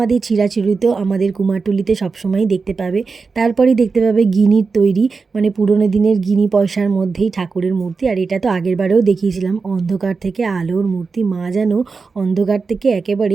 চিরাচরিত আমাদের কুমারটুলিতে সবসময়ই দেখতে পাবে। তারপরেই দেখতে পাবে গিনির তৈরি, মানে পুরোনো দিনের গিনি পয়সার মধ্যেই ঠাকুরের মূর্তি। আর এটা তো আগেরবারেও দেখিয়েছিলাম, অন্ধকার থেকে আলোর মূর্তি, মা যেন অন্ধকার থেকে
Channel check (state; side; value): quieter; left; 4.6 dB